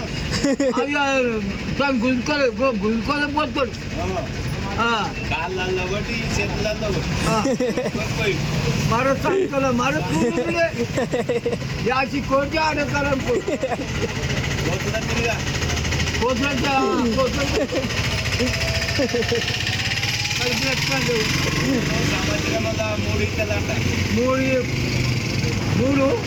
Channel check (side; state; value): both; identical; correlation 1.00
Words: అది దాన్ని గుంజుకోలే పోతాడు. మరో సంఖ్యల మరో యాసి కోటి ఆడతారం మూడు